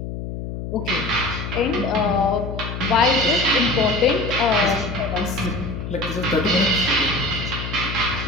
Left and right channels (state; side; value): noise; left; hum, 7 dB below the sound